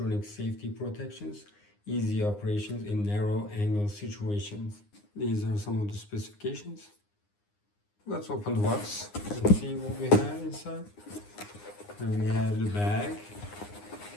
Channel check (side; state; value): right; late; 9.7 ms